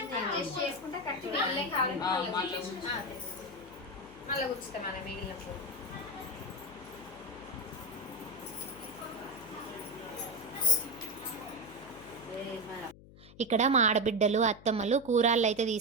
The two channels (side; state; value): left; noise; hum, 20 dB below the sound